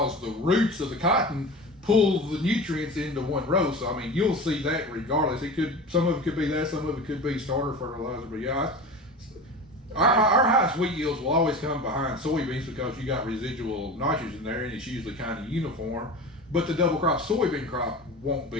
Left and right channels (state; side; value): normal; both; correlation 0.32